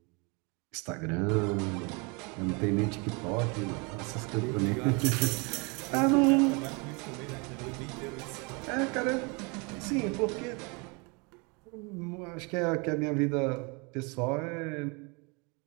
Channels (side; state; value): left; quieter; 30.6 dB